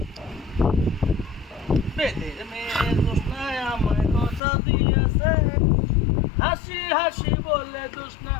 বেদের মেয়ে দোষনায় আমায় কথা দিয়েছে হাসি হাসি বলে দোষনা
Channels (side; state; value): right; drops out; at 4.4 s